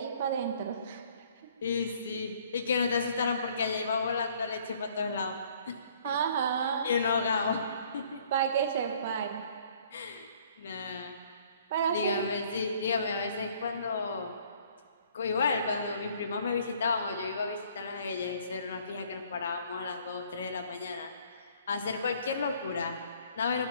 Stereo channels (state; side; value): inverted; both; correlation -0.59